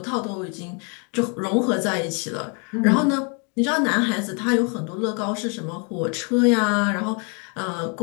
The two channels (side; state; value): right; quieter; 36.2 dB